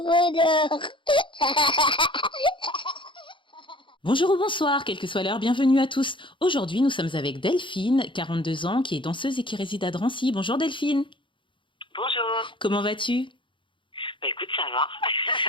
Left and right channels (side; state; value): right; late; 0.24 ms